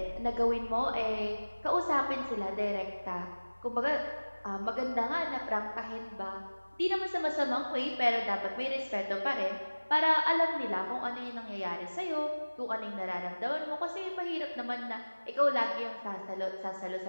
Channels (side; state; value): both; inverted; correlation -1.00